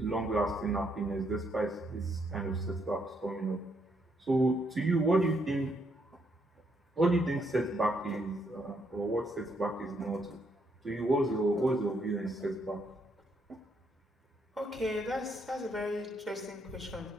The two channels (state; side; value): normal; both; correlation 0.74